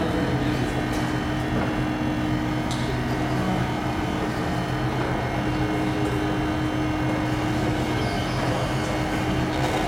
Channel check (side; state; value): both; identical; correlation 1.00